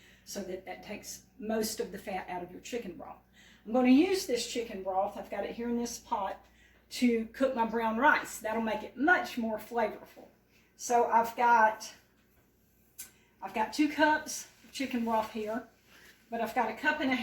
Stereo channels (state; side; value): identical; both; correlation 1.00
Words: so that takes most of the fat out of your chicken broth. I'm going to use this chicken broth, I've got it here in this pot, to cook my brown rice. That'll make it much more flavorful. So I've got 2 cups of chicken broth here, but I've got 1.5